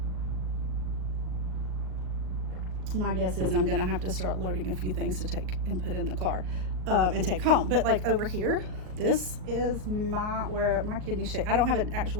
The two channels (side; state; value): left; late; 38 ms